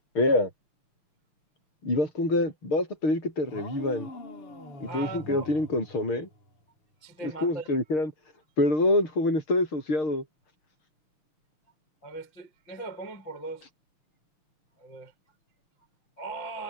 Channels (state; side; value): late; right; 6.5 ms